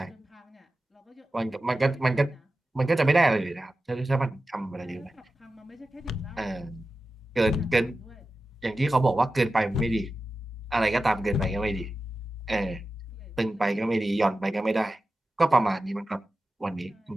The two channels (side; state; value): both; normal; correlation 0.93